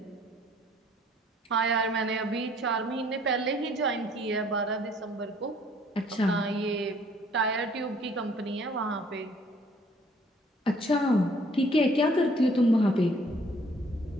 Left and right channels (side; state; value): both; normal; correlation 0.60